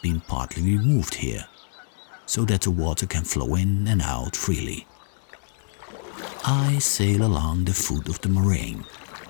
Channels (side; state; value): right; silent; digital silence